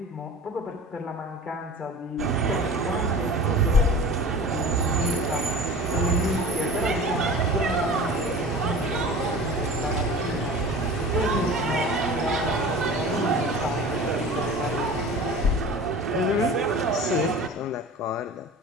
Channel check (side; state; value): both; normal; correlation 0.38